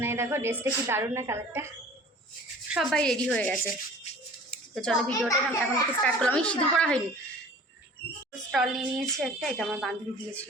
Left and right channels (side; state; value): both; normal; correlation 0.46